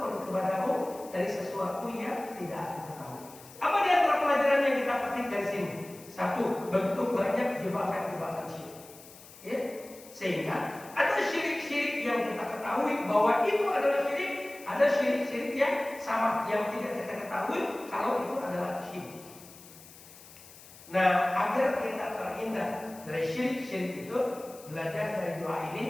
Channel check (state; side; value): noise; left; hiss, 20 dB below the sound